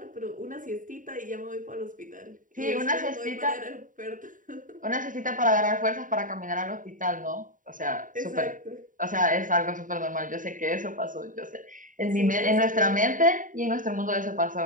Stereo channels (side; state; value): left; late; 0.38 ms